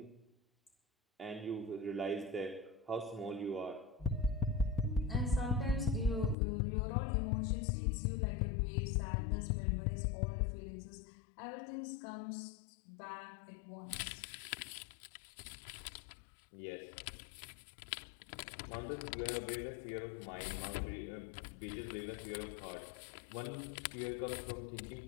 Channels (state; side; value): drops out; right; at 6.4 s